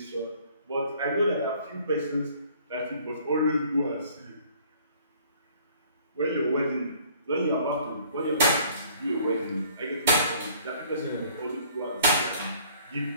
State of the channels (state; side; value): inverted; both; correlation -0.57